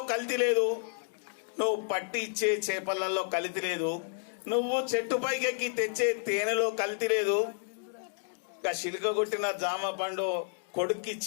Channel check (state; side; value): silent; right; digital silence